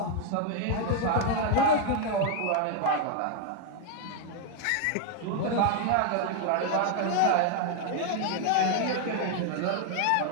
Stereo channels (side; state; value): both; different; correlation 0.00